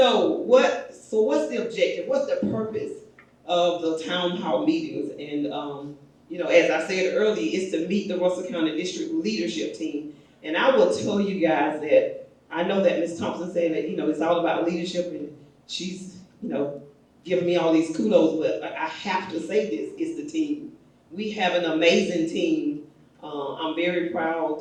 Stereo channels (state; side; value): identical; both; correlation 1.00